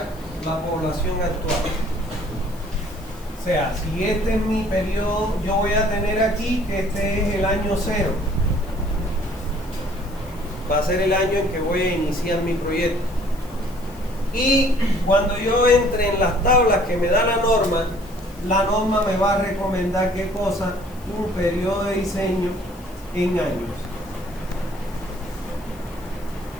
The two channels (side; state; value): left; noise; hiss, 24 dB below the sound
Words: la población actual. O sea, si este es mi periodo, yo voy a tener aquí que este es el año 0. Va a ser el año en que voy a iniciar mi proyecto. Y cuando yo entre en las tablas que me da la norma me va a recomendar qué cosa, un periodo de diseño en años.